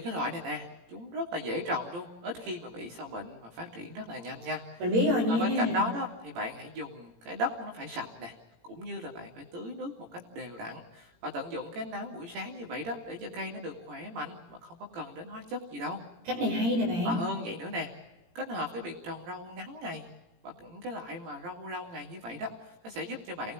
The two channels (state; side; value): late; left; 18 ms